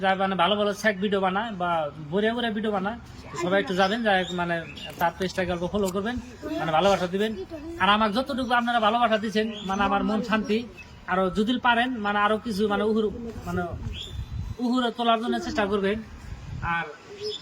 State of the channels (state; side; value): identical; both; correlation 1.00